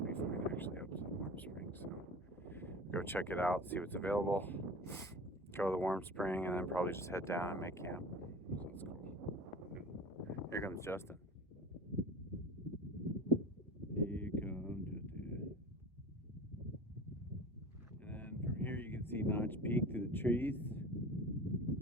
be fine actually up to the Warm Springs. So go check it out, see what's available. Go to the Warm Spring, and then probably just head down and make camp. So that's cool. Here comes Justin. Here comes Justin. And then from here you can see Notch Peak through the trees.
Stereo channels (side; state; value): both; normal; correlation 0.36